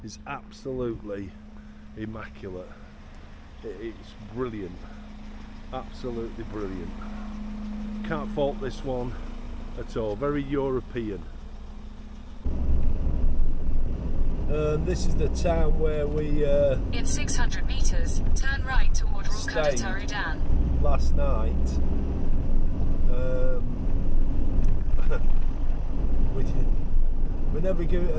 is absolutely immaculate. It's brilliant, absolutely brilliant. Can't fault this one at all. Very European. This is the town where we in 600 meters, turn right toward Crocodile Dam. Last night. We never give it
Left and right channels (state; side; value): identical; both; correlation 1.00